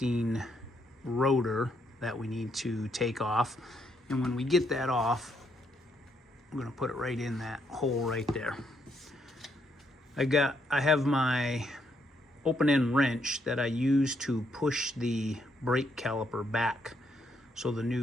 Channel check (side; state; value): both; normal; correlation 0.75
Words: rotor that we need to take off, and when we get that off, I'm going to put it right in that hole right there. I have my open-end wrench that I use to push the brake caliper back so the